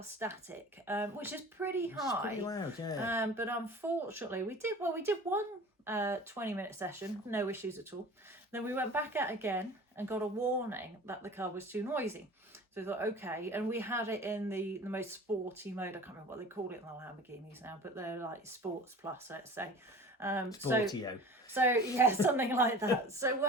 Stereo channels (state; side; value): normal; both; correlation 0.40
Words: static, which is pretty high. It's pretty loud, yeah. But unfortunately we did one 20-minute session, no issues at all. Then we went back out again and got a warning that the car was too noisy. So we thought, okay, and we had it in the most sporty mode. I can't remember what they call it in the Lamborghinis now, but they're like Sports Plus, let's say. Sportio. So yeah, something like that.